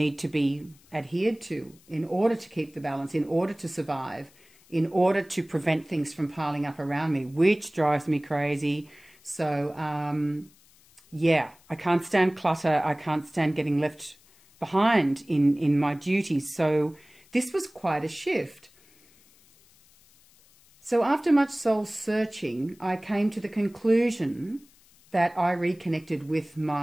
to be adhered to in order to keep the balance, in order to survive, in order to prevent things from piling up around me, which drives me crazy. So, yeah, I can't stand clutter. I can't stand getting left behind in my duties. So this was quite a shift. So after much soul searching, I came to the conclusion that I reconnected with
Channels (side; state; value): left; noise; hiss, 29 dB below the sound